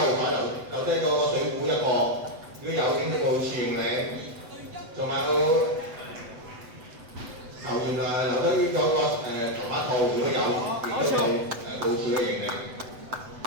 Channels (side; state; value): left; late; 8.0 ms